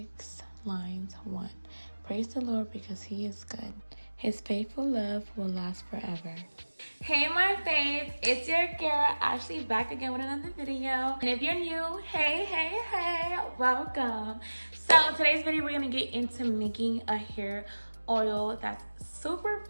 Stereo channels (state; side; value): inverted; both; correlation -1.00